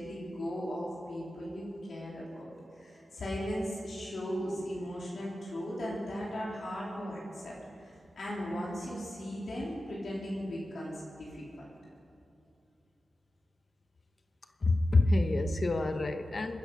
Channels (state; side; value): normal; both; correlation 0.93